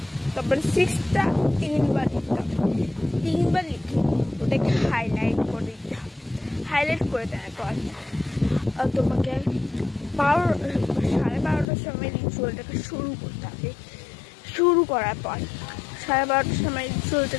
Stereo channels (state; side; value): drops out; right; at 11.7 s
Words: তারপরে 6টা 3বার লিখতে হবে। 3বার লিখে ওটাকে হাইলাইট করে দিতে হবে। হাইলাইট করে দেওয়ার পর তোমাকে 12:30টার সময় রিচুয়ালটাকে শুরু করতে হবে। শুরু করার পর 12:30টার সময়